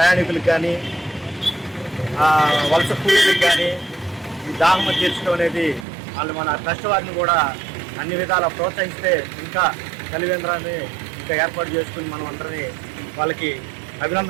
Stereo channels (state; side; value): drops out; left; at 5.9 s